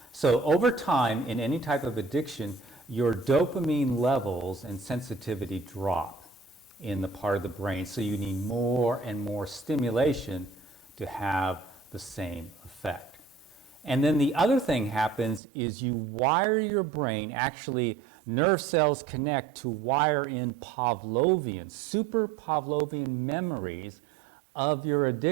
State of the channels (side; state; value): left; drops out; at 15.4 s